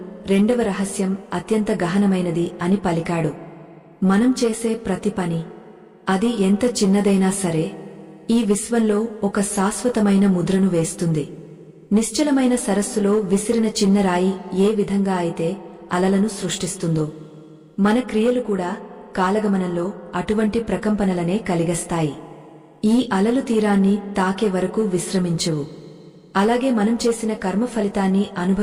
రెండవ రహస్యం అత్యంత గహనమైనది అని పలికాడు. మనం చేసే ప్రతి పని, అది ఎంత చిన్నదైనా సరే, ఈ విశ్వంలో ఒక శాశ్వతమైన ముద్రను వేస్తుంది. నిశ్చలమైన సరస్సులో విసిరిన చిన్న రాయి ఏ విధంగా అయితే అలలను సృష్టిస్తుందో, మన క్రియలు కూడా కాలగమనంలో అటువంటి ప్రకంపనలనే కలిగస్తాయి. ఈ అలలు తీరాన్ని తాకే వరకు విశ్రమించవు. అలాగే మనం చేసిన కర్మ ఫలితాన్ని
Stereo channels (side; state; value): both; identical; correlation 1.00